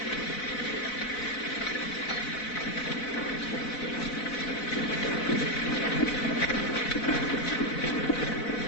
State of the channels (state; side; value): late; right; 4.0 ms